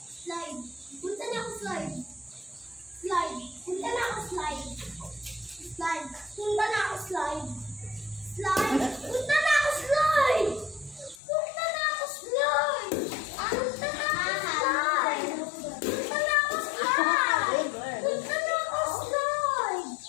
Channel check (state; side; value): drops out; right; at 11.2 s